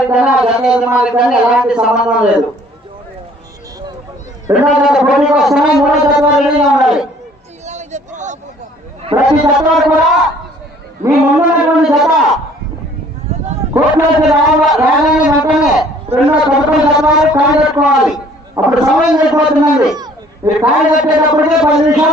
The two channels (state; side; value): normal; both; correlation 0.56